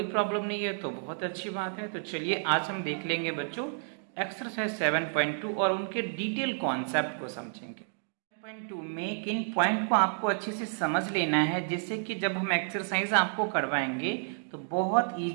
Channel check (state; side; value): silent; left; digital silence